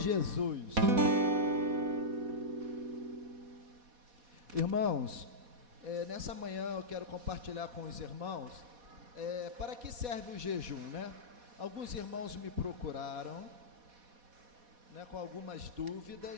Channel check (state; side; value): late; left; 4.1 ms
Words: Jesus. Irmãos, nessa manhã eu quero compartilhar com os irmãos para que serve o jejum, né? Alguns irmãos me procuraram, né, com algumas